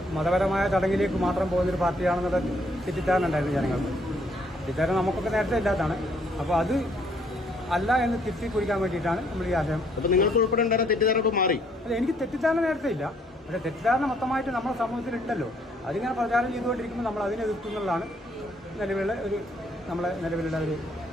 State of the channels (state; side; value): normal; both; correlation 0.66